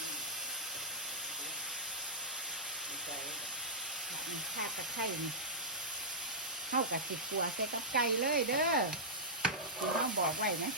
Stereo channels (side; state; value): both; normal; correlation -0.13